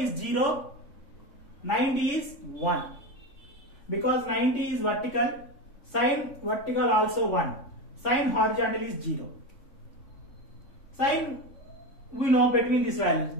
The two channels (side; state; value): right; late; 3.6 ms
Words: 0, 90 is 1. Because 90 is vertical, sine vertical also 1. Sine horizontal is 0. Sine we know between these values,